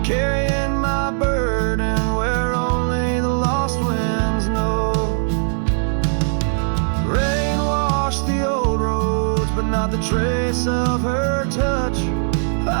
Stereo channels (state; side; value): silent; left; digital silence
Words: carrying my burden where only the lost winds know. Rain washed the old roads, but not the trace of her touch.